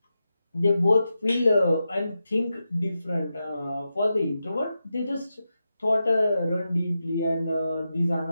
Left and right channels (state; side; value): inverted; both; correlation -0.89